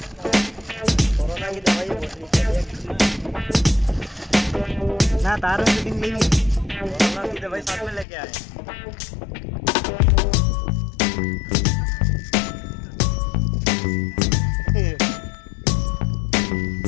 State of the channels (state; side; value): drops out; right; at 8.1 s